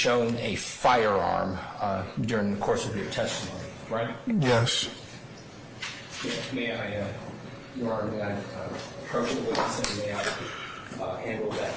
a firearm during the course of your testimony, right? Yes. May I, Your Honor, may I approach the witness and may I handle that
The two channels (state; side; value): identical; both; correlation 1.00